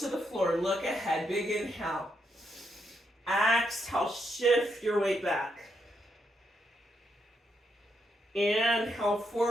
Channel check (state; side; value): normal; both; correlation 0.79